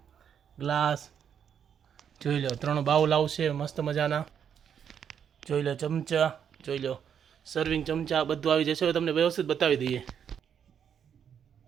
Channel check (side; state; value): left; quieter; 8.2 dB